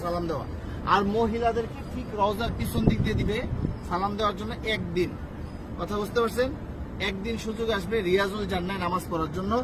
সালাম দেওয়া। আর মহিলাদেরকে ঠিক রওজার পিছন দিক দিয়ে দিবে সালাম দেওয়ার জন্য একদিন। কথা বুঝতে পারছেন? একদিন সুযোগ আসবে রিয়াজুল জান্নাহ নামাজ পড়ার জন্য,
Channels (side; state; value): both; identical; correlation 1.00